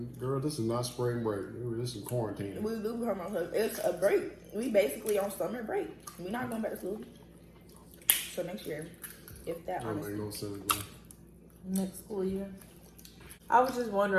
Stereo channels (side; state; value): both; identical; correlation 1.00